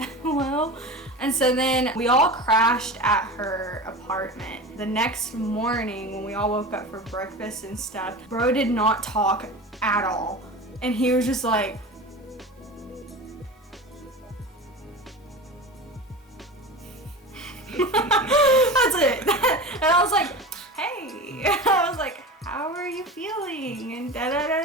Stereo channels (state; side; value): normal; both; correlation 0.30